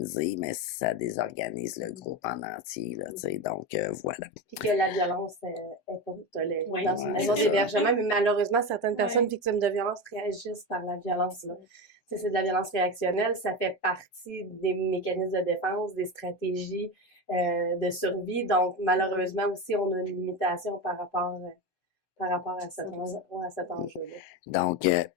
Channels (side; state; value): right; late; 7.9 ms